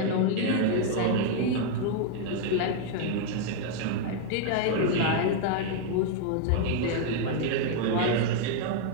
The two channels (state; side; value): different; both; correlation 0.00